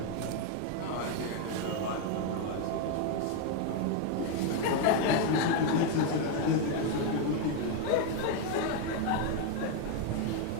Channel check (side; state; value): both; different; correlation 0.01